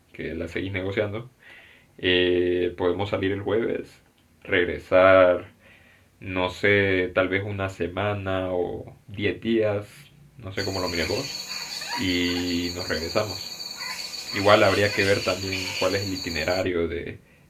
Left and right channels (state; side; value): identical; both; correlation 1.00